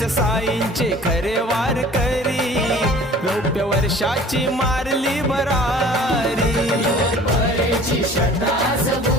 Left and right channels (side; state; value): both; normal; correlation 0.48